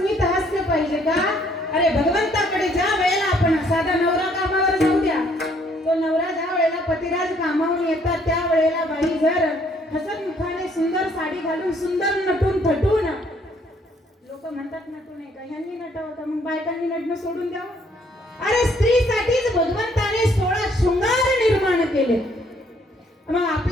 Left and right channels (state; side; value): normal; both; correlation 0.65